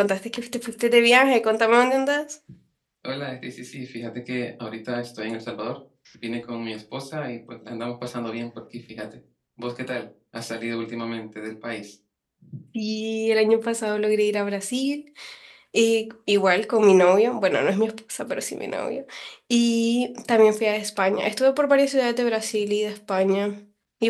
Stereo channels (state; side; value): identical; both; correlation 1.00